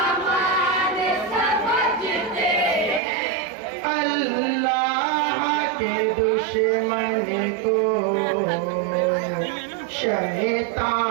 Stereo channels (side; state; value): left; drops out; at 3.0 s